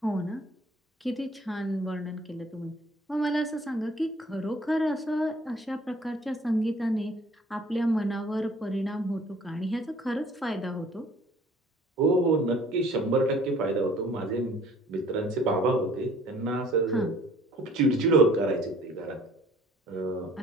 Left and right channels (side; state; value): both; normal; correlation 0.54